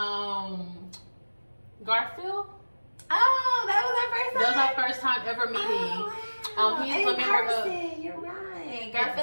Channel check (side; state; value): both; inverted; correlation -1.00